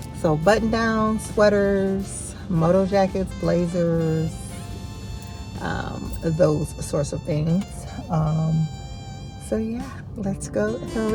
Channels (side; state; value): both; identical; correlation 1.00